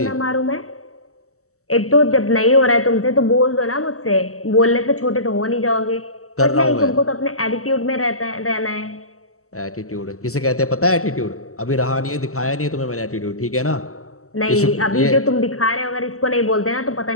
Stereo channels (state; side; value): late; right; 0.64 ms